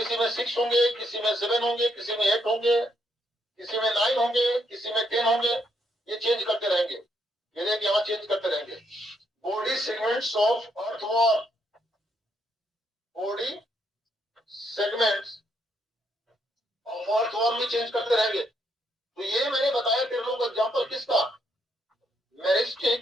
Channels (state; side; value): normal; both; correlation 0.75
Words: में 6 होंगे, किसी में 7 होंगे, किसी में 8 होंगे, किसी में 9 होंगे, किसी में 10 होंगे, ये चेंज करते रहेंगे, ये देख यहाँ चेंज करते रहेंगे। Body segments of earthworm, body segments of earthworm भी चेंज करते रहेंगे। तो ये मैंने बताया तेरे लोगों को एग्जाम्पल किसका,